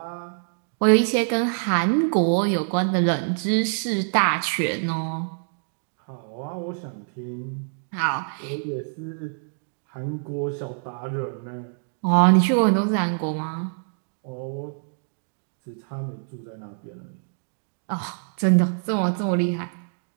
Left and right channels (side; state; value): left; silent; digital silence